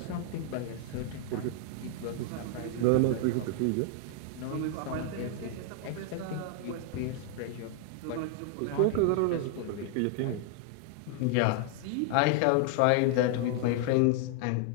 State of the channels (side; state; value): both; different; correlation 0.00